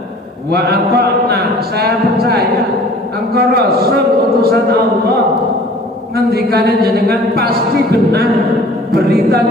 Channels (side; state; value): both; normal; correlation 0.48